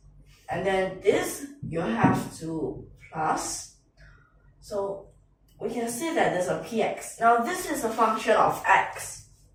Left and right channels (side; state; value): both; identical; correlation 1.00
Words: And then this, you have to plus. So we can see that there's a px. Now this is a function of x.